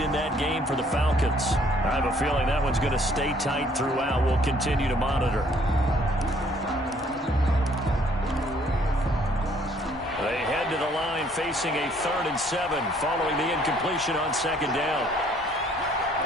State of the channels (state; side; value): normal; both; correlation 0.62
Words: in that game for the Falcons. I have a feeling that one's going to stay tight throughout. We'll continue to monitor. They head to the line facing a 3rd and 7 following the incompletion on 2nd down.